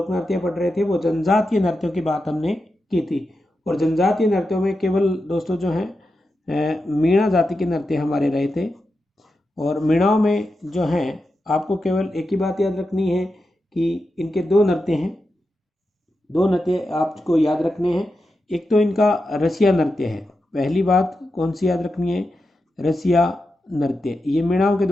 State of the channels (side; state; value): both; normal; correlation 0.89